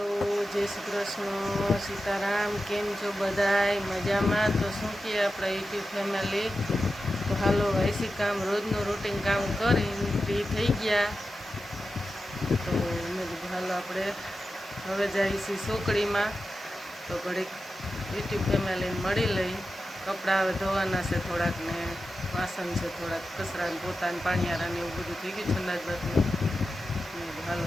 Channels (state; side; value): normal; both; correlation 0.92